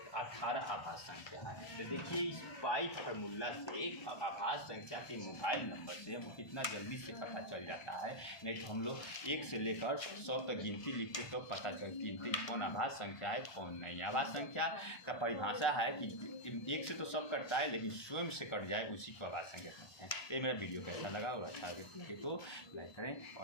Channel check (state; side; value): late; right; 1.4 ms